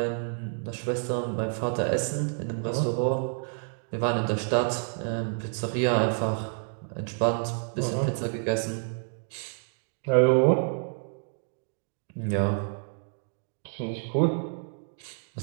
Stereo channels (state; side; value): silent; left; 59 dB below the other